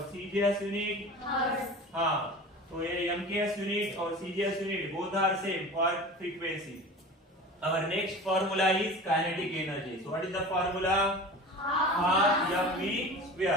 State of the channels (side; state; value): both; normal; correlation 0.36